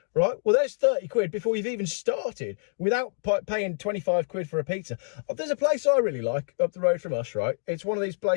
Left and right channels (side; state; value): right; silent; digital silence